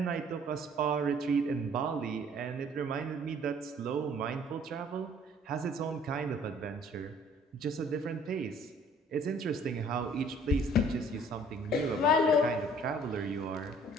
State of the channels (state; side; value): normal; both; correlation 0.56